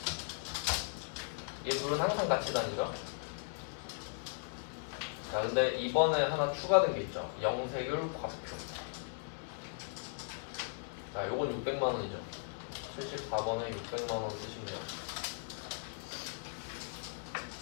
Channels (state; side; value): silent; right; 53 dB below the other